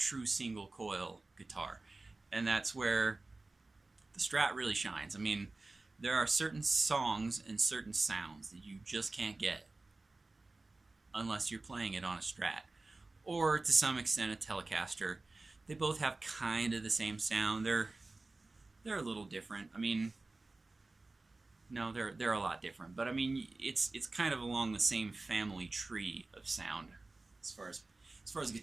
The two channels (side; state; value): left; quieter; 3.3 dB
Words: single coil guitar. And that's where the Strat really shines. I mean, there are certain songs and certain sounds that you just can't get unless you're playing it on a Strat, or to some extent a Telecaster. They both have kind of the same sound. They're a little different. I mean, no, they're a lot different. But I mean, it's kind of along the same family tree of sound as far as